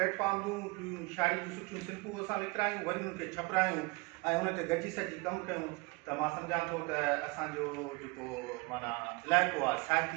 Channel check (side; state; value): left; quieter; 26.1 dB